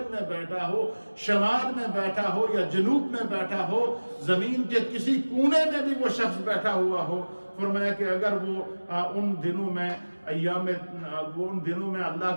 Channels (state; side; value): inverted; both; correlation -1.00